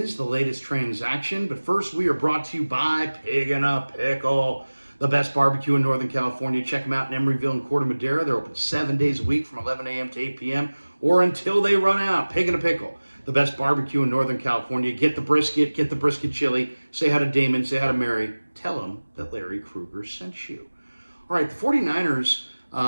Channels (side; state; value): both; inverted; correlation -1.00